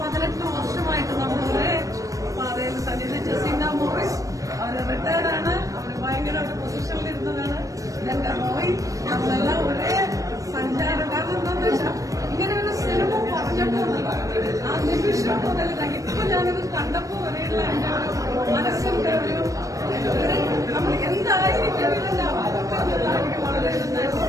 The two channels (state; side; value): late; left; 0.16 ms